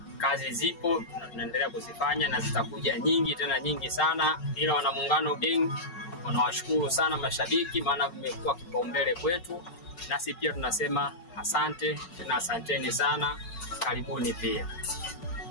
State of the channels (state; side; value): late; right; 5.4 ms